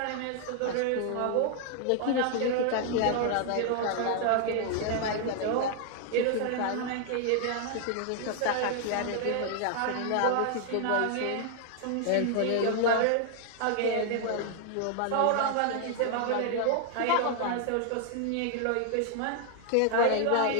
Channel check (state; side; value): different; both; correlation 0.00